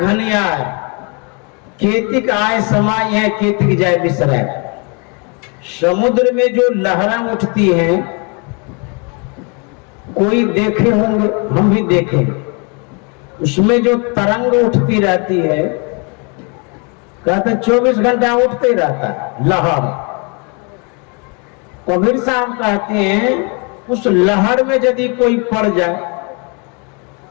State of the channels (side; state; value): right; quieter; 33.6 dB